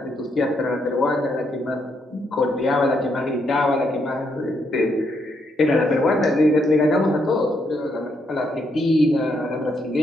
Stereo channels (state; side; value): normal; both; correlation 0.76